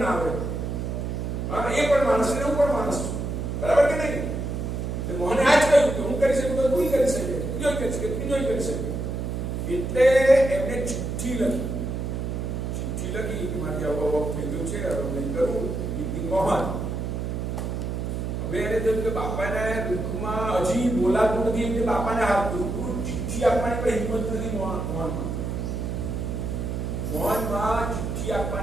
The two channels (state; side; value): noise; right; hum, 3 dB below the sound